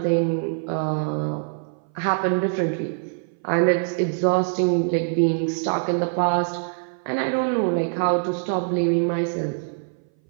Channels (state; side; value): silent; left; 59 dB below the other